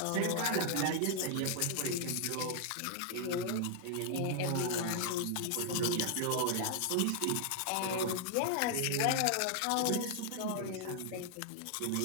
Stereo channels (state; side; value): different; both; correlation 0.00